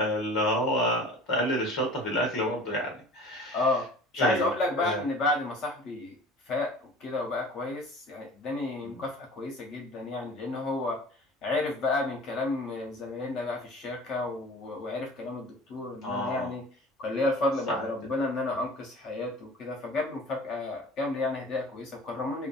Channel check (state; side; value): normal; both; correlation 0.42